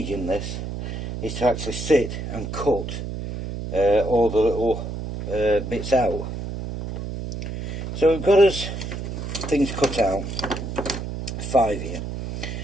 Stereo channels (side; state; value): right; noise; hum, 6 dB below the sound